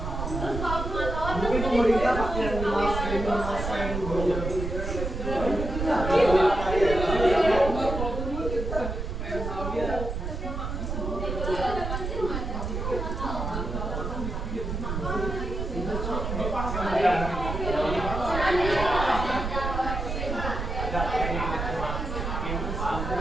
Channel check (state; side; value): noise; right; rumble, 4 dB below the sound